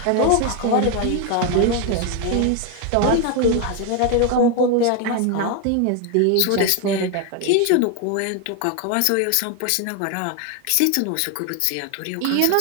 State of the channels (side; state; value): both; different; correlation 0.01